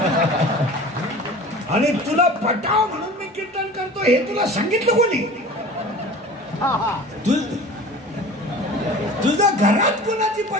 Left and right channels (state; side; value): normal; both; correlation 0.40